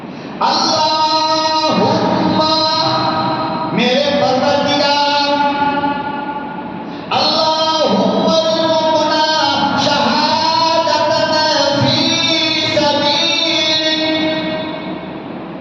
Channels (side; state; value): both; identical; correlation 1.00